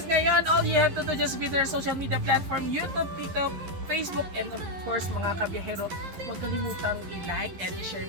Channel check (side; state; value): left; late; 11 ms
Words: ngayon, all you have to do just be their social media platform, YouTube, TikTok, Facebook, and of course mga kabiyahero, huwag kalimutang i-like and i-share